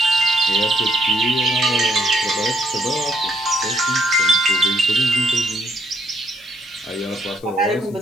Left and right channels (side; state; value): left; noise; hiss, 26 dB below the sound